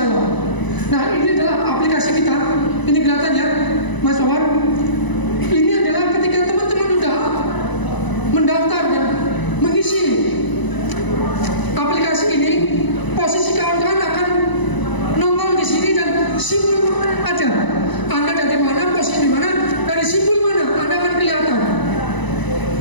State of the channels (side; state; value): right; late; 1.0 ms